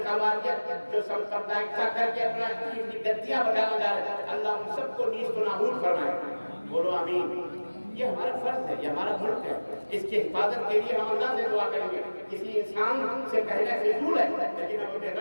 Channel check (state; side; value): inverted; both; correlation -1.00